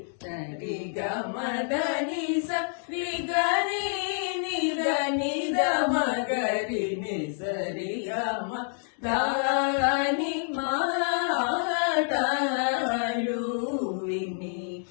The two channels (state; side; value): silent; right; 59 dB below the other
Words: రి గమ దని స రి గరి ని దని దమ గరి ని సరి గమ దాని మాటలు విని